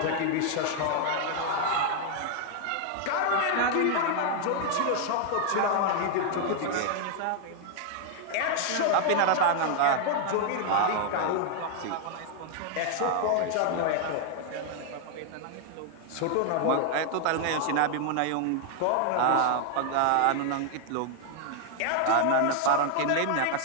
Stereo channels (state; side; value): different; both; correlation 0.00